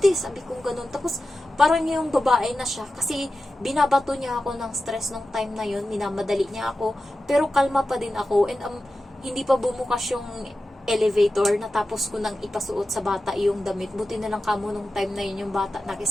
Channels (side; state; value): both; normal; correlation 0.93